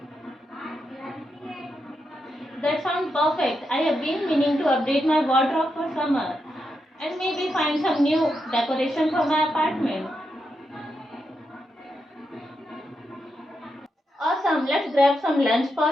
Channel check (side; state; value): both; normal; correlation 0.84